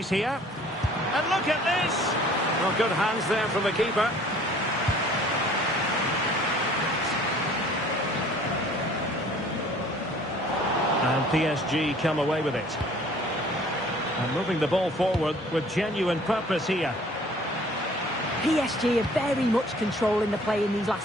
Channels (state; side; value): normal; both; correlation 0.53